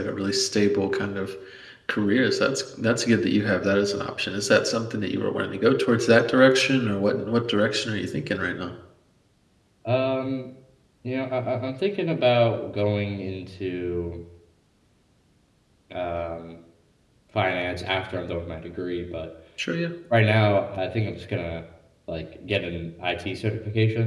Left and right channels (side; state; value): both; identical; correlation 1.00